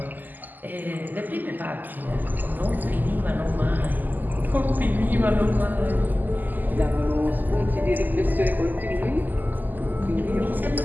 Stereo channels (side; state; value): left; late; 0.086 ms